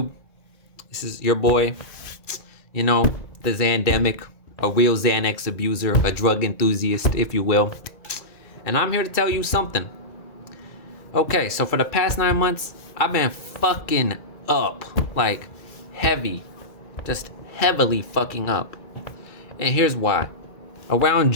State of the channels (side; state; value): right; late; 2.3 ms